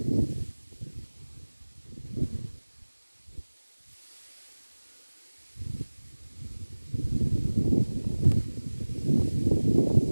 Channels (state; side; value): inverted; both; correlation -1.00